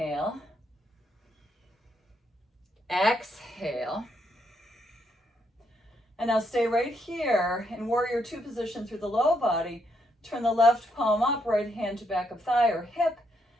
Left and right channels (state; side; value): normal; both; correlation 0.76